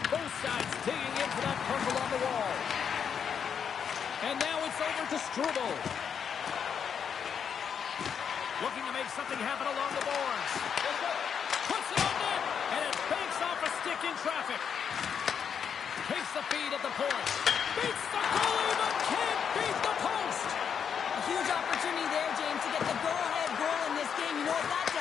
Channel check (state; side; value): quieter; right; 7.4 dB